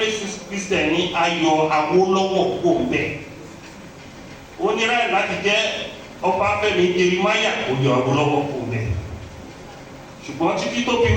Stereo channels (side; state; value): both; identical; correlation 1.00